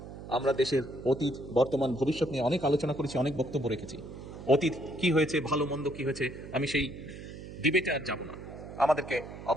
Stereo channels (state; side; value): noise; right; hum, 12 dB below the sound